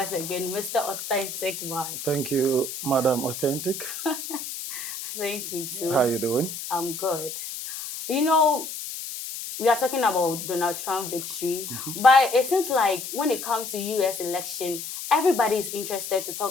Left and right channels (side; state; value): left; noise; hiss, 7 dB below the sound